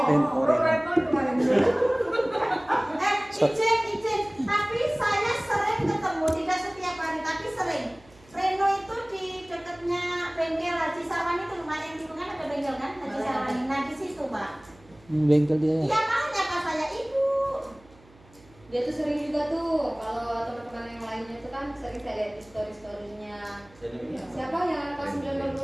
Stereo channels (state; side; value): noise; right; hum, 27 dB below the sound